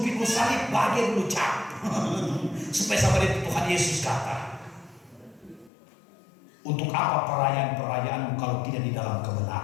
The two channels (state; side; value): drops out; right; at 5.7 s